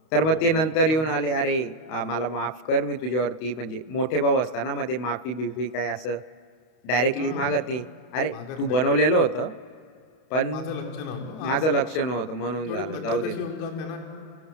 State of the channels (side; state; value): right; late; 32 ms